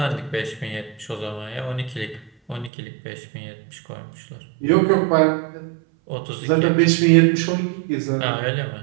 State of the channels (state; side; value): drops out; left; at 2.7 s